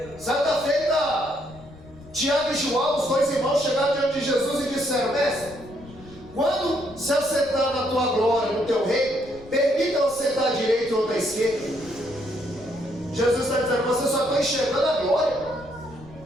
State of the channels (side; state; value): left; noise; rumble, 21 dB below the sound